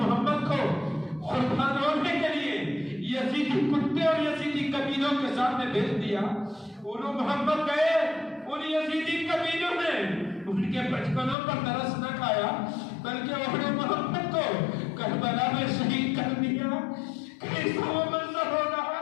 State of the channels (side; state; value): right; drops out; at 11.4 s